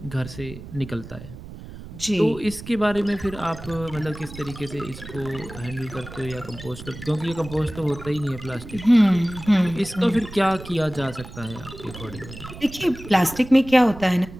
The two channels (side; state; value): right; noise; rumble, 14 dB below the sound